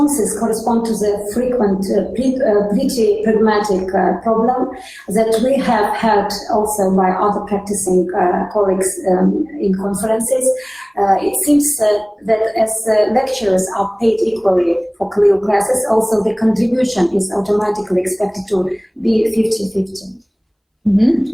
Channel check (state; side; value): identical; both; correlation 1.00